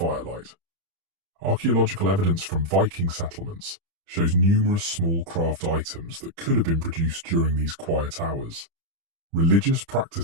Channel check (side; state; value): left; late; 30 ms